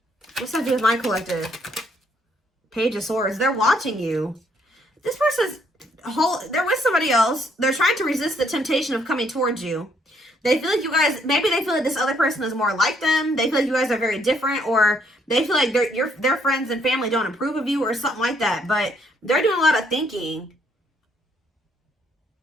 What's that to do with my collective? Page of Swords. They're watching you. This person's they're with somebody else. They're trying to resist the temptation of coming towards you. They feel like you guys, maybe they feel like this other person is more like them. They feel like you guys are very different, or they feel like their friends and family don't approve of you or something like that. But they're doing a lot of thinking.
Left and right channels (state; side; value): normal; both; correlation 0.69